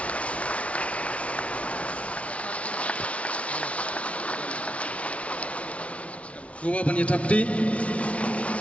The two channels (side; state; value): right; late; 0.063 ms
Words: Gua banyak Tapti.